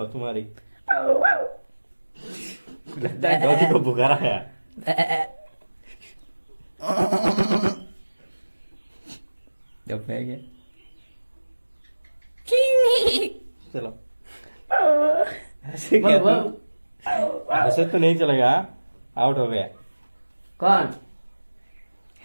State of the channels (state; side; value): inverted; both; correlation -1.00